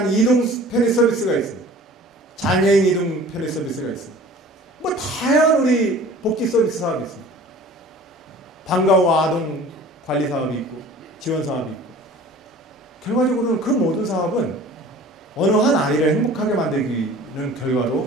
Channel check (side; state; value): both; normal; correlation 0.45